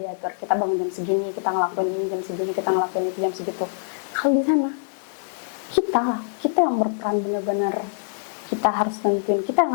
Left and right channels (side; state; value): right; silent; 59 dB below the other